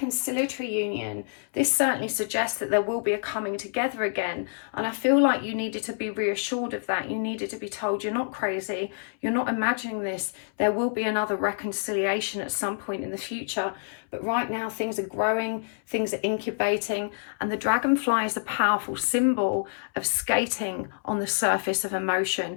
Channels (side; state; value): right; silent; 60 dB below the other